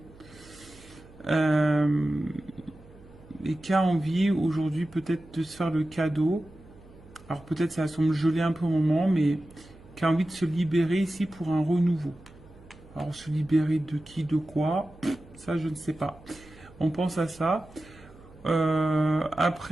et qui a envie aujourd'hui peut-être de se faire le cadeau. Alors peut-être ça semble geler un peu au moment, mais qui a envie de se libérer ici pour un renouveau. Alors se libérer de qui, de quoi, ça je ne sais pas. On pense à ça.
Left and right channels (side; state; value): right; noise; hum, 23 dB below the sound